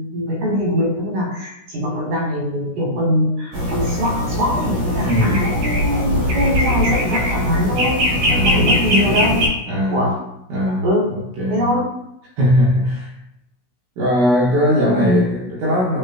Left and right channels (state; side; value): late; left; 16 ms